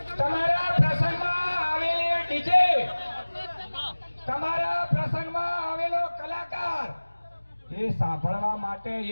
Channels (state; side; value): inverted; both; correlation -1.00